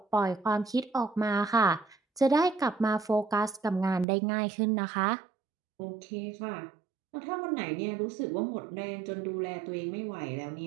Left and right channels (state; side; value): drops out; left; at 4.0 s